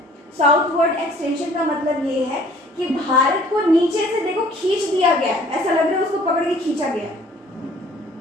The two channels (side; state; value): both; normal; correlation 0.54